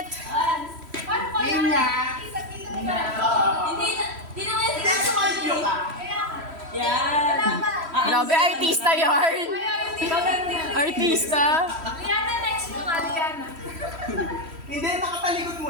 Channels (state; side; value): late; left; 3.1 ms